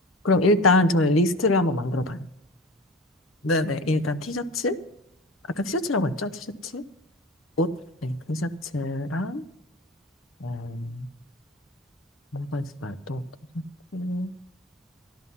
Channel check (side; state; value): both; normal; correlation 0.35